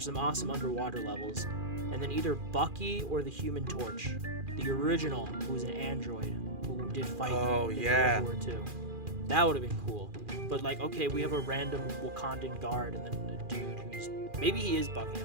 awesome underwater levels, and then either Bucky or the Human Torch, the original, who was an android who did fight in World War II. That would have been cool. But okay, we have a random Wakandan guard and then a dude who's maybe he is Bucky.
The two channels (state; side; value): late; left; 2.4 ms